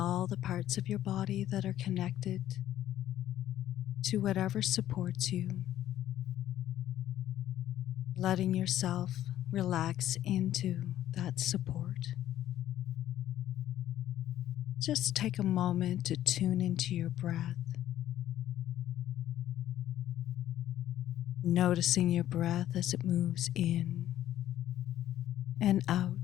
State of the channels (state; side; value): quieter; right; 12.5 dB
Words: the parts of your body that are connected to whatever supports you, letting yourself relax into that support. Just take a moment to tune into your breath, noticing your breath as it moves in and